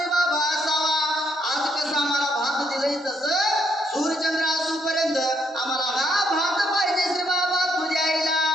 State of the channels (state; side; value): normal; both; correlation 0.73